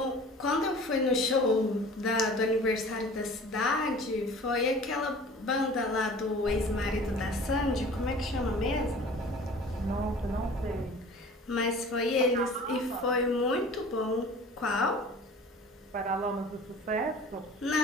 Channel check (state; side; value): normal; both; correlation 0.44